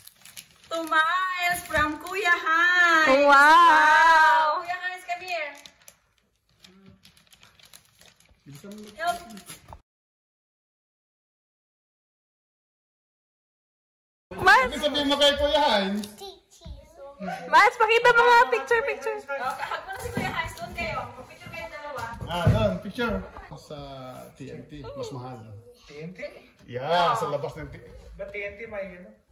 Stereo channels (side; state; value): both; identical; correlation 1.00